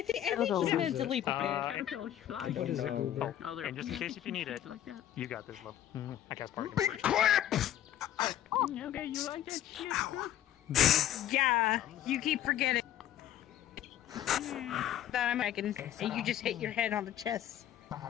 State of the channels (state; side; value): quieter; right; 11.7 dB